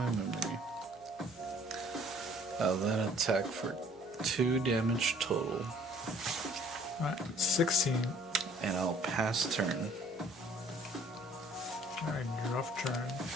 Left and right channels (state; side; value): noise; right; hum, 27 dB below the sound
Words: memory. I'll then attack for 2 damage total. Alright, 16. And I'll pass turn. Alright, you're off turn.